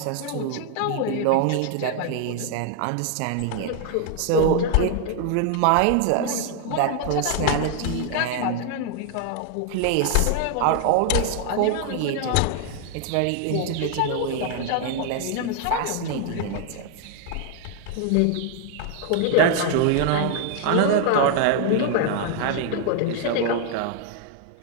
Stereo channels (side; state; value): both; different; correlation 0.00